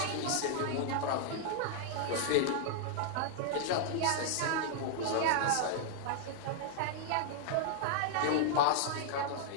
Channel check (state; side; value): different; both; correlation -0.01